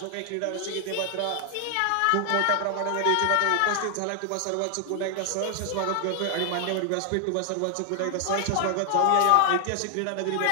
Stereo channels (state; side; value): different; both; correlation 0.00